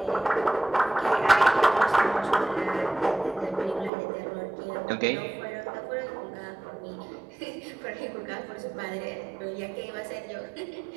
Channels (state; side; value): drops out; left; at 3.9 s